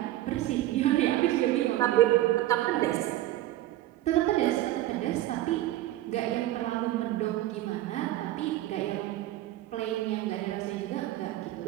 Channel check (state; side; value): quieter; left; 15.1 dB